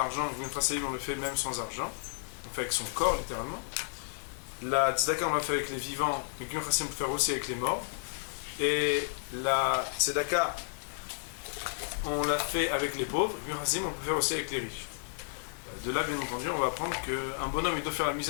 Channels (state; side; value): silent; right; 56 dB below the other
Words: Giyun Chasadim, on le fait même sans argent. On le fait avec son corps, littéralement. La Tzedaka, on le fait avec les vivants. Mais Giyun Chasadim, on peut le faire aussi avec les morts. Et la Tzedaka, on l'a fait avec les pauvres. Giyun Chasadim, on peut faire aussi avec les riches. De là, bien entendu, on va apprendre qu'un bonhomme il doit faire la